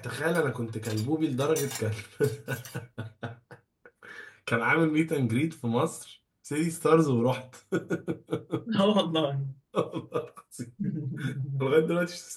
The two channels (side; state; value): both; identical; correlation 1.00